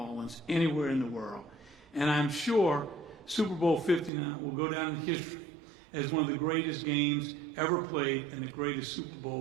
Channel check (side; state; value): left; drops out; at 4.1 s